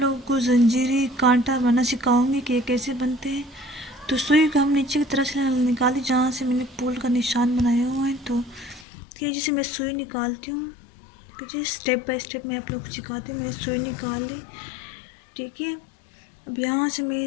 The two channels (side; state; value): right; drops out; at 8.8 s